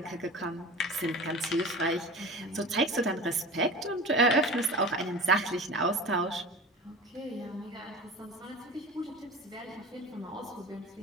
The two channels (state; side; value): normal; both; correlation 0.35